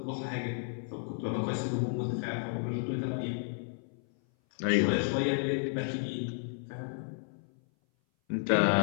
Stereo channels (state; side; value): silent; right; 56 dB below the other